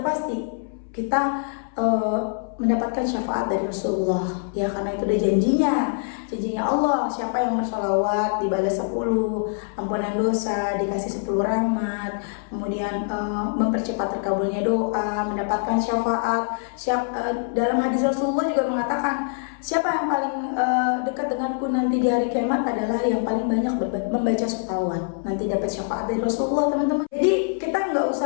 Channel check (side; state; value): right; silent; 63 dB below the other